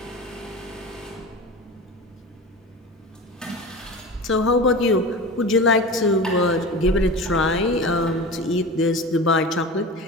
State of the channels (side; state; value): both; normal; correlation 0.31